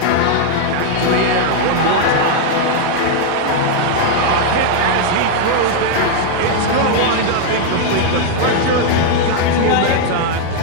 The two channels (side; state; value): both; different; correlation 0.00